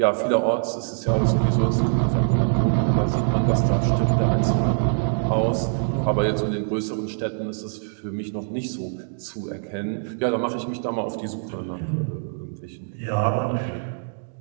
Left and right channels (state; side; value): silent; left; digital silence